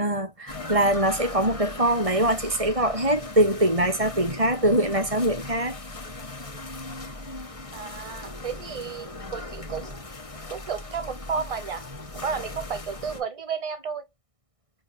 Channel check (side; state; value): left; late; 1.6 ms